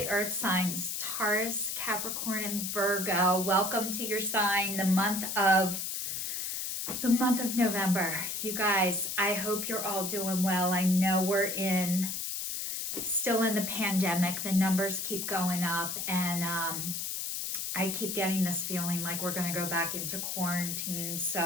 earth signs, Taurus, Capricorn, and Virgo. Welcome to your sign, the month of November. You guys, I hope you're all doing well. I know we're still in the pandemic. The numbers keep going up, and I keep getting this feeling like we're going to go back into quarantine.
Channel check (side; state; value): left; noise; hiss, 3 dB below the sound